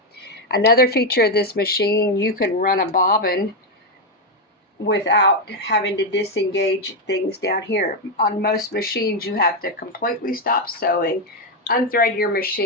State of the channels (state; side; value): normal; both; correlation 0.05